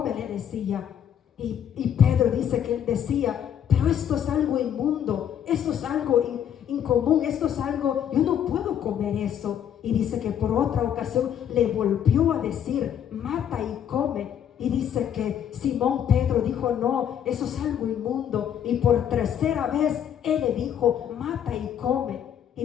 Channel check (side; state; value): right; quieter; 9.4 dB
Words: le decía. Y Pedro dice que él decía: pero esto es algo inmundo, esto es algo incomún, esto es algo, yo no puedo comer eso. Y dice que por otra ocasión le volvió a decir: mata y come. Y dice que Simón Pedro dijo: no, eso es algo inmundo. Y por tercera vez él le dijo: mata y come. Y